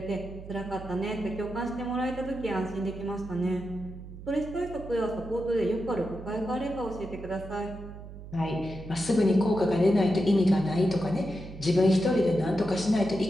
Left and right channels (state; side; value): noise; right; hum, 13 dB below the sound